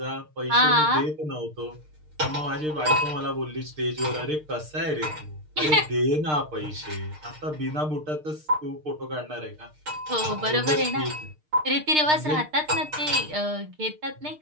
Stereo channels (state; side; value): late; left; 6.6 ms